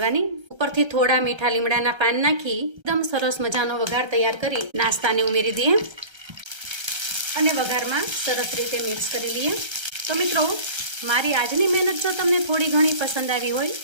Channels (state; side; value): late; left; 1.3 ms